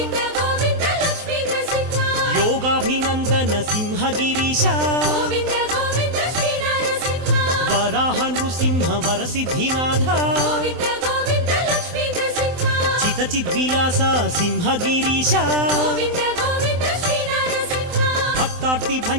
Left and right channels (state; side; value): late; left; 23 ms